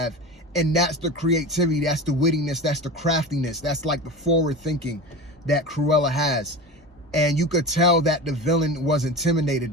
and that's the creativity, that's the wittiness, that's the craftiness, that's like the forward thinking that Cruella has. And you could tell that the villain was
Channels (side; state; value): both; normal; correlation 0.29